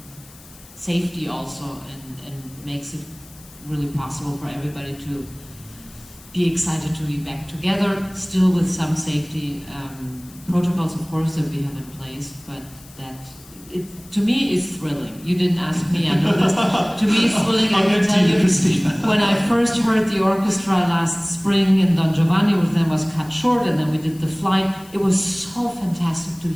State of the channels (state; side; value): noise; left; hiss, 22 dB below the sound